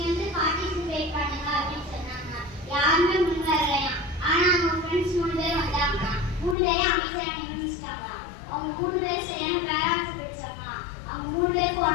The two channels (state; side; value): drops out; right; at 6.6 s